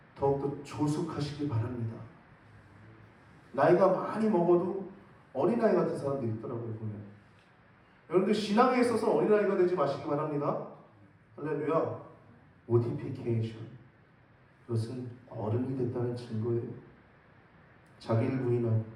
더욱더 조숙하시길 바랍니다. 나이가 많이 먹어도 어린아이 같은 사람들이 있더라고요, 보면. 여러분들 신앙에 있어서 어린아이가 되지 마시기 바랍니다. 할렐루야. 모티피케이션, 그것은 어른이 됐다는 증거예요. 자기를 부인하고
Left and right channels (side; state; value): both; identical; correlation 1.00